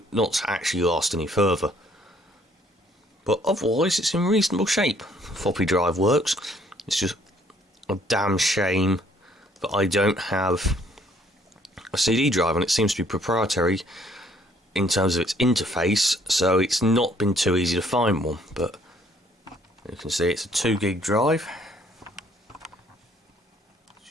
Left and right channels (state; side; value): normal; both; correlation 0.63